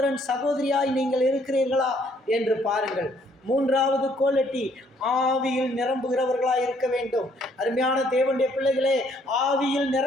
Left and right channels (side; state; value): both; normal; correlation 0.66